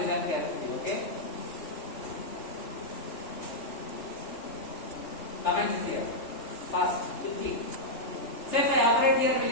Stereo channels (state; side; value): late; right; 3.4 ms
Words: carefully, okay? Comments here. Fast, quickly. So if I operate here, will